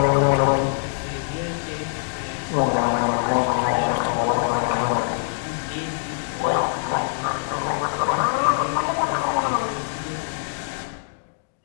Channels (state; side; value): silent; right; digital silence